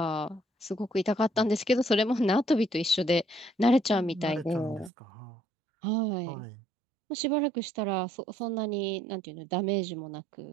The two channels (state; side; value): drops out; left; at 4.9 s